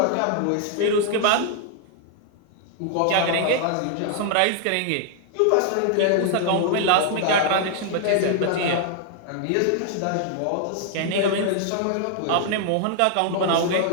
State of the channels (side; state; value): both; different; correlation 0.00